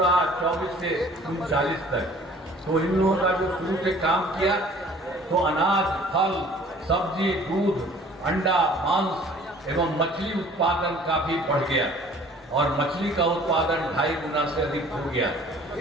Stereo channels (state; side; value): normal; both; correlation 0.51